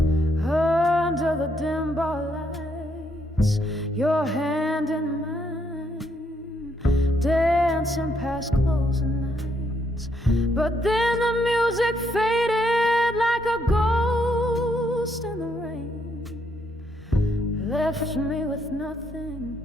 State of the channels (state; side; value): normal; both; correlation 0.74